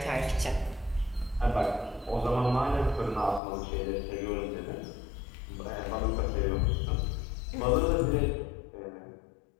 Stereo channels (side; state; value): right; drops out; at 3.4 s